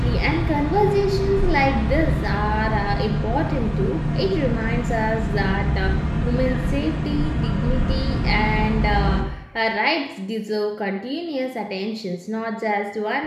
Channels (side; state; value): both; identical; correlation 1.00